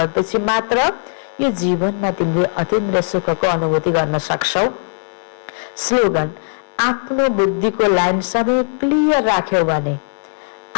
मात्र यो जीवनमा तिमीले अतीन्द्रिय सुखको अनुभूति गर्न सक्छौ। स्लोगन आफ्नो बुद्धिको लाइन सधैँ क्लियर राख्यौ भने,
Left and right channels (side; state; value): right; silent; digital silence